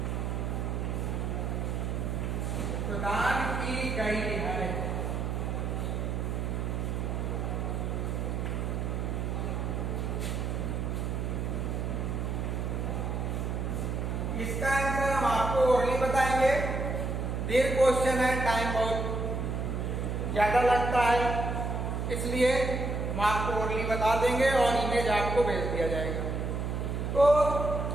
की गई है। इसका आंसर हम आपको ओरली बताएंगे। दीर्घ क्वेश्चन है, टाइम बहुत ज्यादा लगता है, इसलिए हम आपको ओरली बता देंगे और इमेज आपको भेज दिया जाएगा। तो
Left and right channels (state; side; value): noise; right; hum, 1 dB below the sound